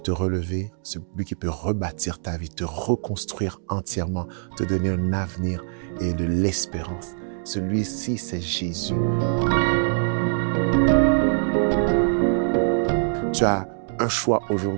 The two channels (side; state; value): left; silent; digital silence